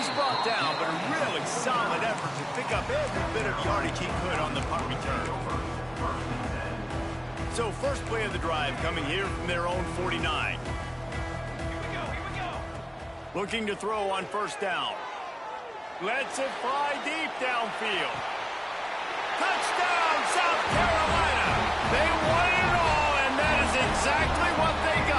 brought down, but a really solid effort to pick up every bit of yardage he could on the punt return. So first play of the drive coming here from their own 49. Here we go. Looking to throw on 1st down. Lets it fly deep downfield. Touchdown, South Carolina! They won it all, and that is exactly what they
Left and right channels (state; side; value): identical; both; correlation 1.00